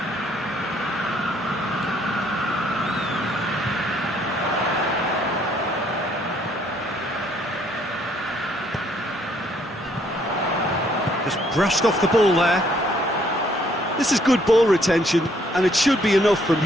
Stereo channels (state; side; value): normal; both; correlation 0.66